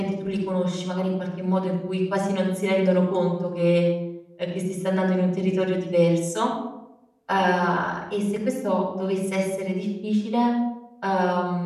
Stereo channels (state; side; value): identical; both; correlation 1.00